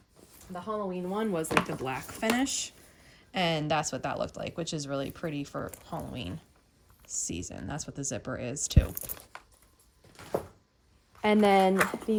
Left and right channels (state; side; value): identical; both; correlation 1.00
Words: The Halloween one was like the black finish. And that's what that looked like, which is really pretty for Halloween season. That's what the zipper is too. And then